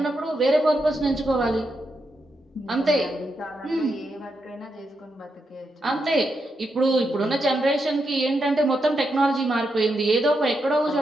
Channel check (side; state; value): both; normal; correlation 0.84